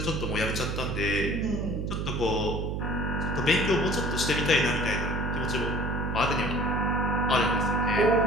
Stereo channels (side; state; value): right; noise; hum, 2 dB below the sound